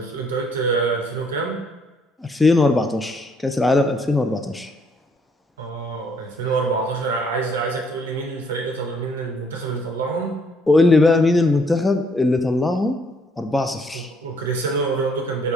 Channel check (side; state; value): both; normal; correlation 0.67